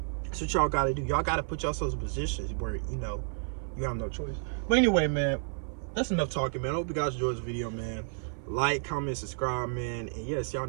That's what y'all got to do. Y'all got to put yourselves in positions where, you know, you have no choice. But anyway, man, that's enough talking, man. I hope you guys enjoyed this video, man. Like, comment, subscribe, man. And yes, y'all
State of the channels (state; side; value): silent; left; 56 dB below the other